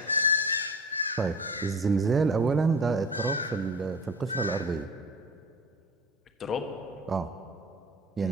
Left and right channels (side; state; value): both; normal; correlation 0.37